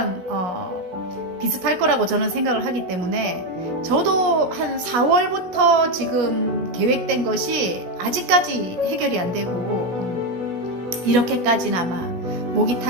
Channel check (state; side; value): late; left; 16 ms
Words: 비슷할 거라고 저는 생각을 하기 때문에, 저도 한 4월부터 지금 계획된 것이 아직까지 해결이 안 되고 이렇게까지는 아마 목이